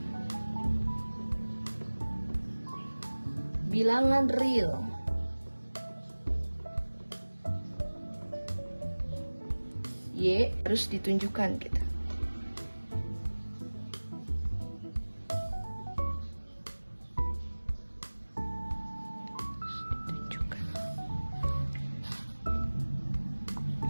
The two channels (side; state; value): both; inverted; correlation -1.00